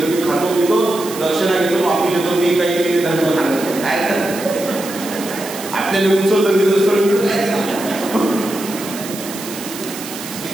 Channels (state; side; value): noise; right; hiss, 11 dB below the sound